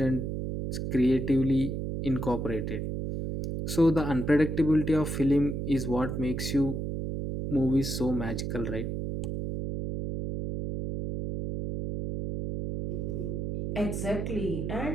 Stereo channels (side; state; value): right; noise; hum, 3 dB below the sound